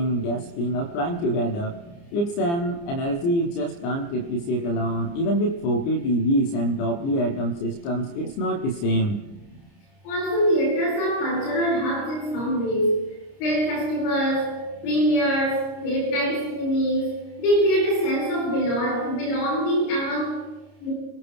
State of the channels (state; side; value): late; right; 29 ms